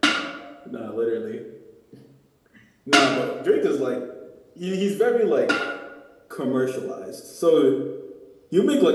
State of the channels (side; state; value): both; identical; correlation 1.00